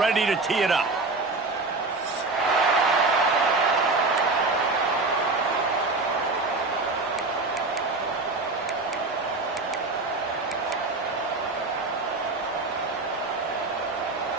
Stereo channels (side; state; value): left; quieter; 3.5 dB